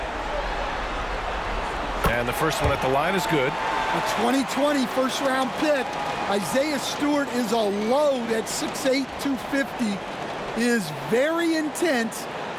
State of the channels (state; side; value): identical; both; correlation 1.00